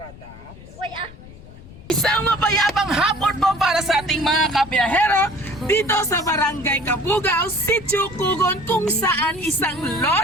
Uy ah! Isang mapayapang hapon po para sa ating mga kabiyahero dito sa Barangay Kabugao, Sitio Kugon, kung saan isang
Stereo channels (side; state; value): left; noise; rumble, 18 dB below the sound